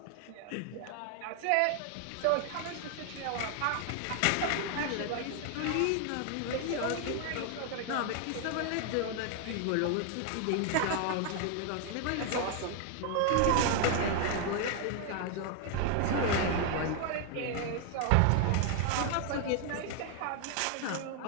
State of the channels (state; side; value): different; both; correlation 0.00